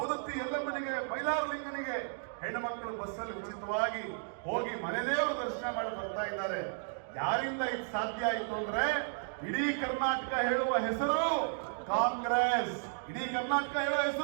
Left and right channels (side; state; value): left; silent; digital silence